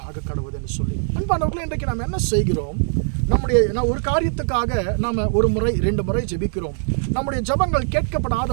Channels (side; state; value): left; silent; digital silence